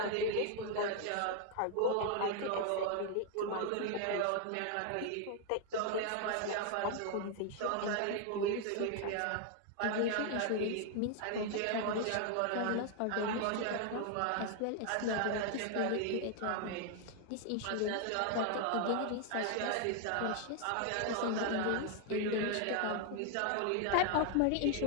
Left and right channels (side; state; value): both; different; correlation 0.00